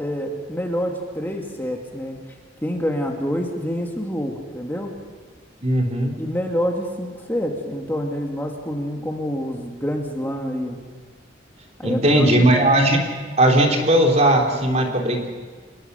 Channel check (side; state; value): both; normal; correlation 0.47